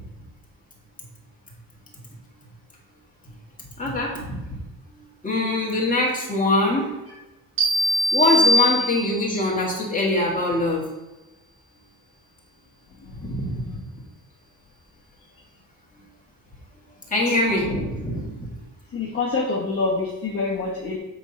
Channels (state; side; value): normal; both; correlation 0.28